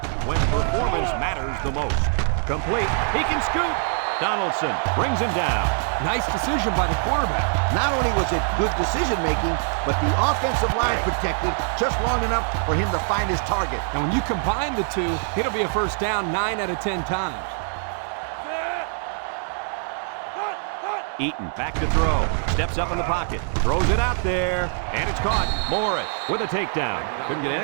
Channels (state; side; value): silent; left; 55 dB below the other